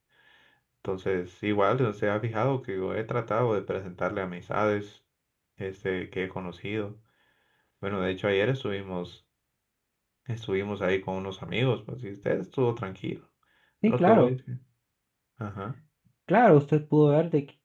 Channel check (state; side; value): identical; both; correlation 1.00